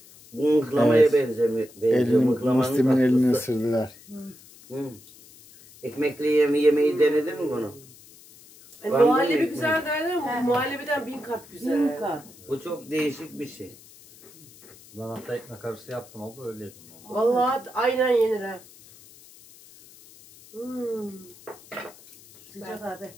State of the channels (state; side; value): noise; left; hiss, 23 dB below the sound